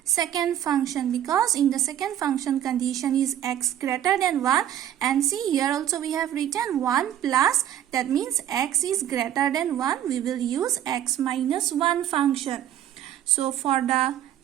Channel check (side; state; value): left; quieter; 11.1 dB